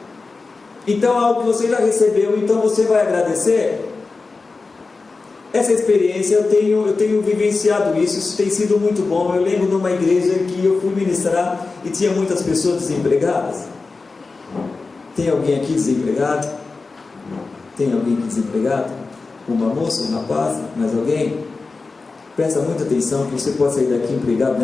Então algo que você já recebeu, então você vai agradecer. Essa experiência eu tenho vivenciado isso tem sido muito bom. Eu lembro numa igreja que eu fui ministrar e tinha muitas pessoas desempregadas. Tem alguém aqui desempregado? Tem alguém aqui desempregado? Uma moça, um rapaz, mais alguém? Presta muita atenção que você pode sair daqui empregado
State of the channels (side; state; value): right; quieter; 4.0 dB